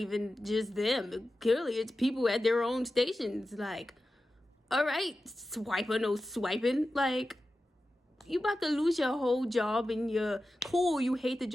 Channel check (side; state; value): both; normal; correlation 0.93